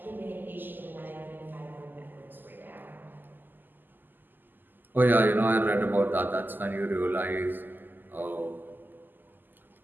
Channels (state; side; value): late; left; 0.090 ms